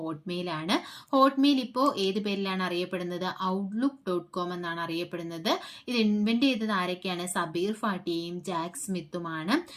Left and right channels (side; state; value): both; identical; correlation 1.00